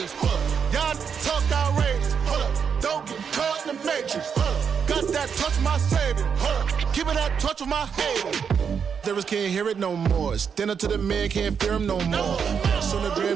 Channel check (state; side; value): quieter; left; 6.8 dB